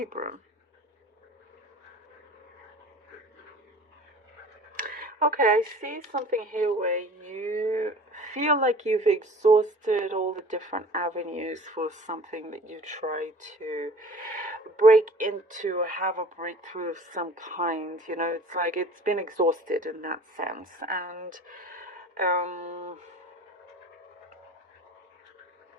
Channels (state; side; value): normal; both; correlation 0.45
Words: Okay, I see something here where you feel like you've exhausted all the different avenues for something that you try to break into or have a breakthrough of some kind. You know, it's like it's been exhausted in that sense. And